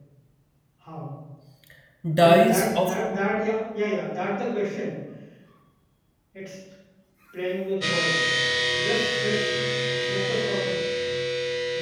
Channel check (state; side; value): identical; both; correlation 1.00